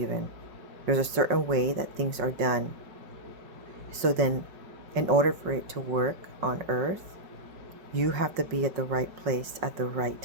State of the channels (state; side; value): late; left; 5.5 ms